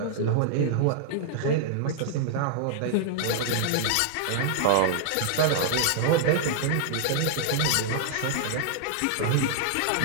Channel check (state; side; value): different; both; correlation -0.01